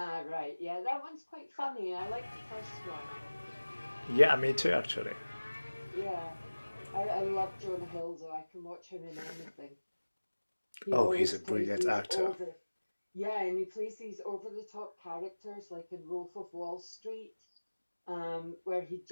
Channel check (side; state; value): both; inverted; correlation -1.00